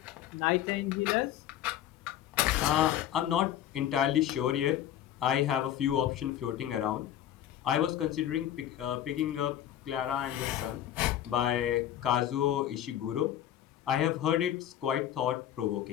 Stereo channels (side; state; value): right; quieter; 11.5 dB